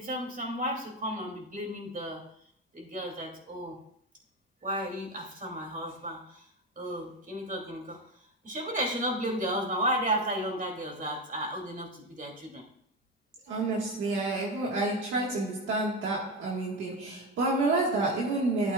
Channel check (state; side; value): normal; both; correlation 0.18